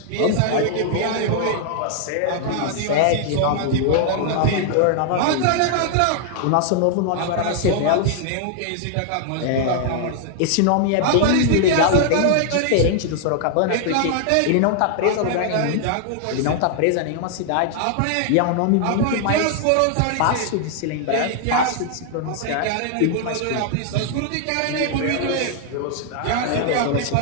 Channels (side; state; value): both; different; correlation 0.00